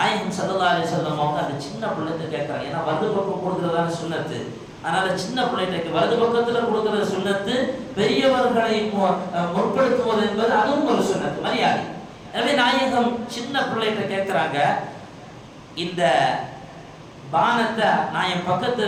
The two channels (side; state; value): both; identical; correlation 1.00